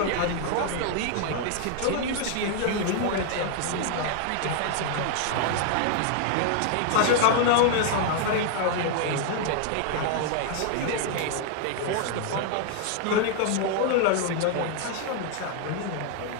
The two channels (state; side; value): different; both; correlation 0.00